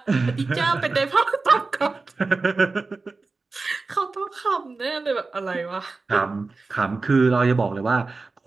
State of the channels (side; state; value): left; quieter; 3.8 dB